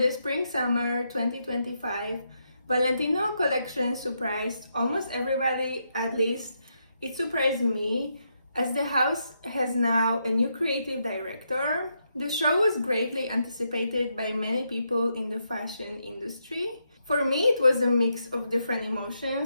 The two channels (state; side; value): inverted; both; correlation -0.81